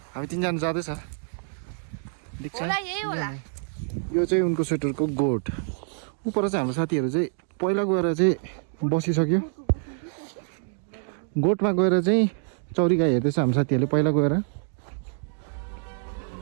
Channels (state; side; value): silent; left; digital silence